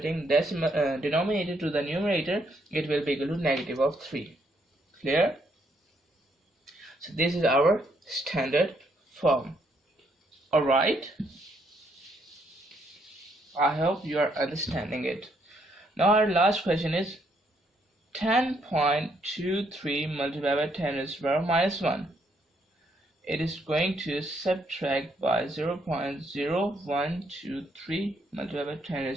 decimal denominator to the numerator, it will be equal to negative of 3. Clear? So this is our standard form. Alright, I hope you are understanding it. Now our last question is 10.23 multiplied by 10 raised to the power minus 1. It is going to subtract by 0.0123 multiplied by 10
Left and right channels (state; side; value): normal; both; correlation 0.72